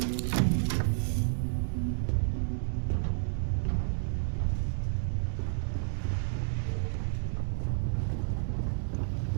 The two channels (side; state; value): left; silent; digital silence